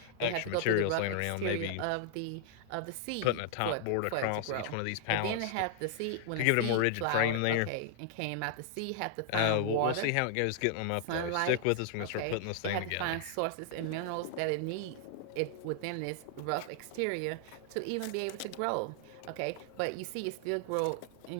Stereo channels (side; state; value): both; different; correlation -0.01